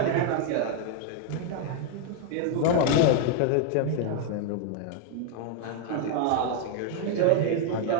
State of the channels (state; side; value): different; both; correlation 0.00